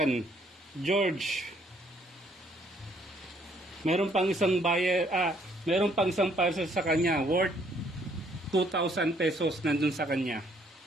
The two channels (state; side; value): normal; both; correlation 0.66